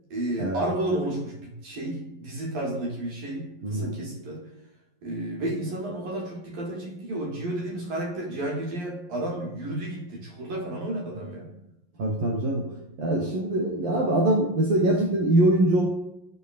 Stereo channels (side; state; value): left; late; 11 ms